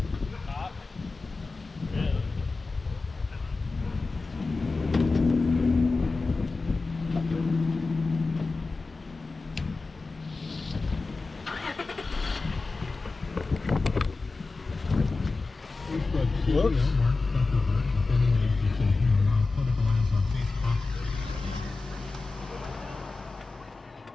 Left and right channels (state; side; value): quieter; right; 3.8 dB